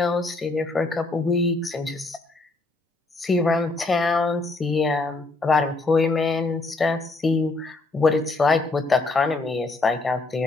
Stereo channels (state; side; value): quieter; right; 3.3 dB